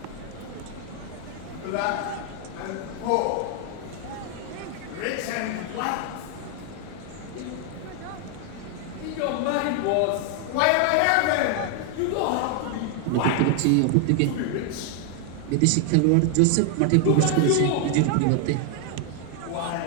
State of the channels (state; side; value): different; both; correlation 0.00